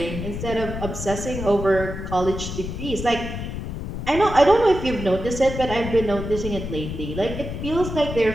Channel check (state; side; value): noise; left; rumble, 6 dB below the sound